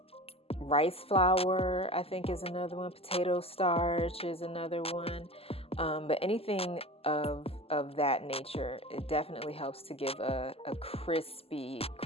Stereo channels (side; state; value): right; late; 0.29 ms